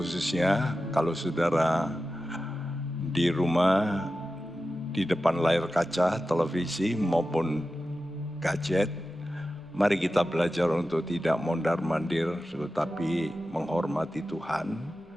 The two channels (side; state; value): both; normal; correlation 0.93